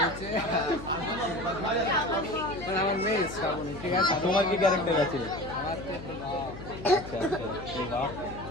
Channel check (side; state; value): left; noise; hum, 12 dB below the sound